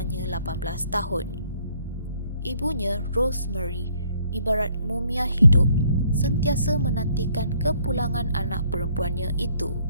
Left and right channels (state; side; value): inverted; both; correlation -0.64